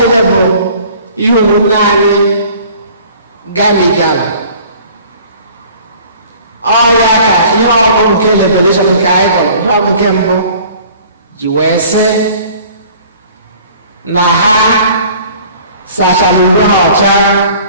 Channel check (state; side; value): inverted; both; correlation -0.50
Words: bụ ihe ụmụnne anyị galigara. Ọ ya ka ihe ọgụ nke revelation nke anyị gọrọ, ihe ọgụ nke mbụ ji wee sị na ha sachara uwe ha ọcha